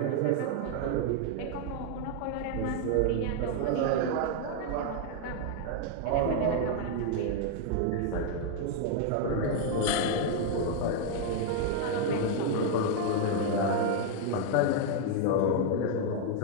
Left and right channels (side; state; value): both; different; correlation 0.00